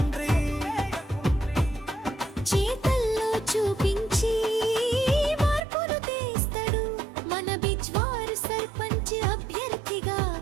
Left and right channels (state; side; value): drops out; left; at 5.7 s